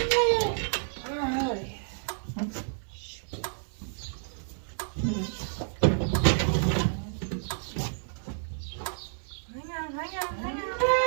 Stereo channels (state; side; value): silent; left; digital silence